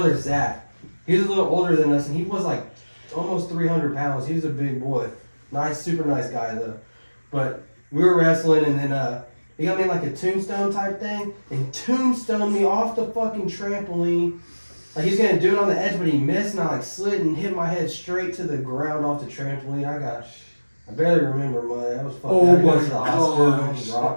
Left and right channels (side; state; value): both; inverted; correlation -1.00